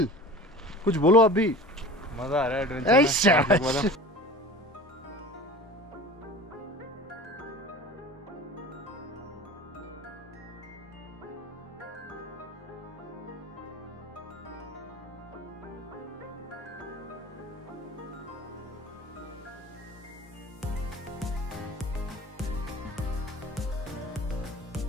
कुछ बोलो आप भी। मजा आ रहा है एडवेंचर में।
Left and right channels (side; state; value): both; normal; correlation 0.38